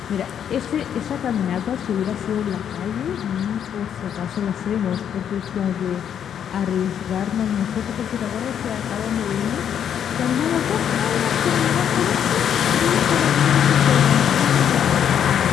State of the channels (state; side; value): quieter; right; 8.9 dB